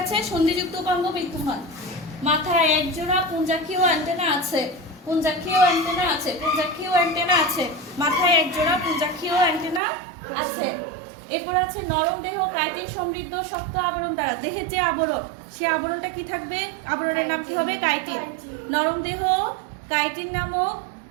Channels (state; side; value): drops out; left; at 9.8 s